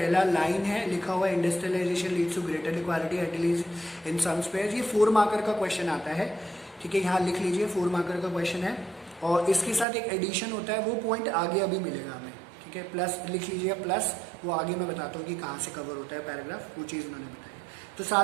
लाइन है लिखा हुआ है, industrialization leads to greater equality at least in some spheres. ये 4 मार्कर का क्वेश्चन आता है, ठीक है, यहाँ लिख लीजिए 4 मार्कर का क्वेश्चन है। और इसके साथ एक एडिशन होता है, वो पॉइंट आगे अभी मिलेगा हमें, ठीक है। प्लस लिख लीजिए प्लस, वो आगे मैं बताता हूँ कि कहाँ से कवर होता है पैराग्राफ, वो चीज़ उन्होंने बताई। तो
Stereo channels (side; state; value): left; drops out; at 9.9 s